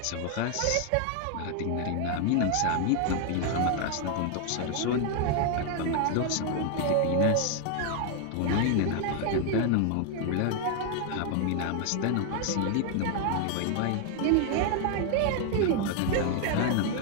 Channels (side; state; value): both; different; correlation 0.00